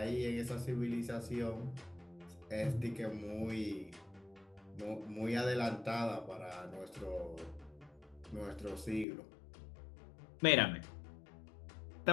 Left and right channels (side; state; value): right; drops out; at 9.1 s